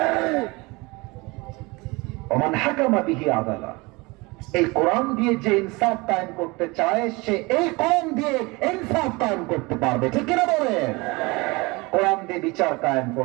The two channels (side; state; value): left; quieter; 24.9 dB